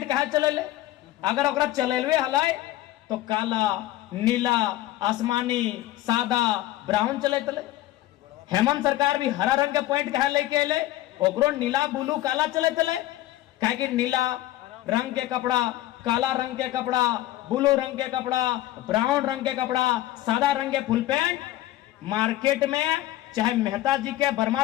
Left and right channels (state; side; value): quieter; right; 15.3 dB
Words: कहा चले ले अगर ओकरा चलेलवे हलाए तो काला नीला आसमानी सादा ब्राउन चले तले। हेमंत सरकार भी हरा रंग के पॉइंट कहा लेके अले ओकरो नीला ब्लू काला चले तले काहे कि नीला रंग के कपड़ा काला रंग के कपड़ा ब्लू रंग के कपड़ा ब्राउन रंग के कपड़ा सादा रंग के फुल पैंट मार्केट में चाहे मेहता जी के वर्मा